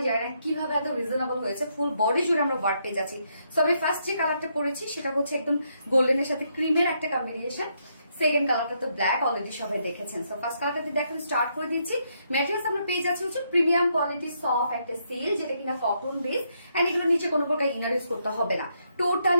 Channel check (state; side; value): inverted; both; correlation -0.76